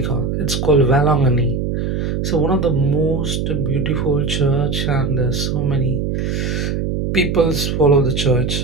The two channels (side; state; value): right; noise; hum, 1 dB below the sound